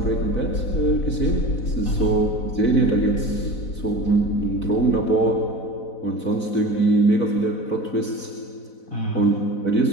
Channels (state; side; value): late; right; 4.0 ms